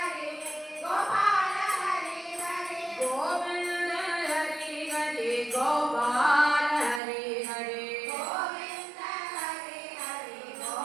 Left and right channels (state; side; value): drops out; left; at 7.0 s